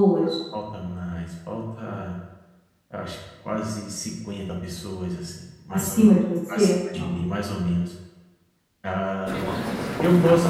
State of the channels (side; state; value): both; identical; correlation 1.00